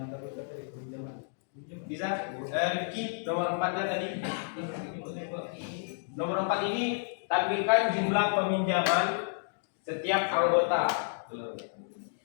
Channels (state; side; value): silent; right; digital silence